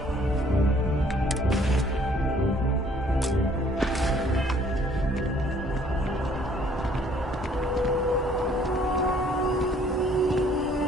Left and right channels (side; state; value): both; normal; correlation 0.60